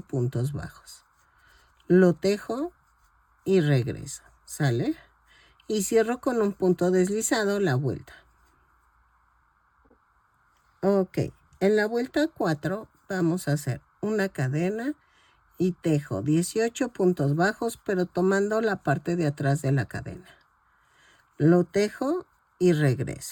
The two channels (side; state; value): both; identical; correlation 1.00